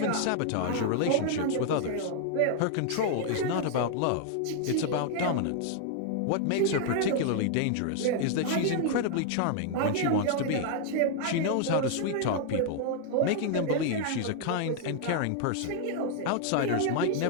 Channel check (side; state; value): both; different; correlation 0.00